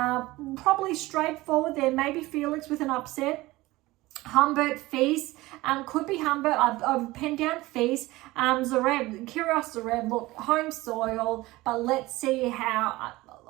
probably straightforward there. Maybe Felix with an upset. Humbert, Fils, could be Humbert. I've penned down Fils. Zverev, Kyrgios, Zverev, look, home soil, but let's see how.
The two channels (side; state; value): left; quieter; 19.4 dB